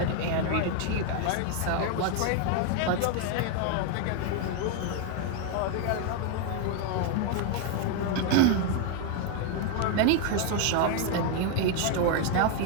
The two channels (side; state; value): both; different; correlation 0.01